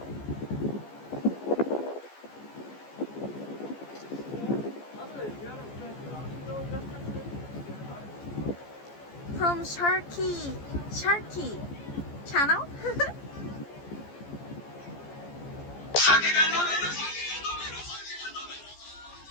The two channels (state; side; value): late; right; 14 ms